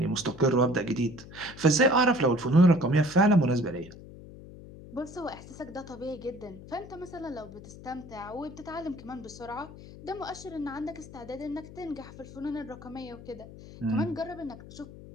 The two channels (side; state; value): left; noise; hum, 16 dB below the sound